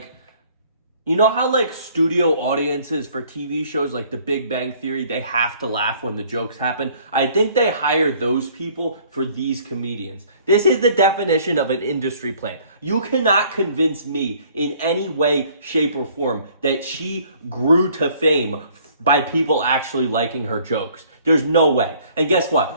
you know how like studio audiences for TV shows like The Big Bang Theory, they have to laugh when the jokes happen? I think they hire those people for these comedians. This is the definition of an industry plant. You cannot convince me in any way, shape, or form that she grew to fame by people actually liking her jokes. There's no way. And guess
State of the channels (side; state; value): both; inverted; correlation -0.57